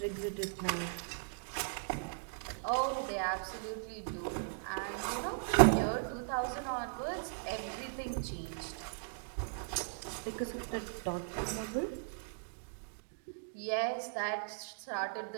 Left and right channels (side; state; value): left; silent; digital silence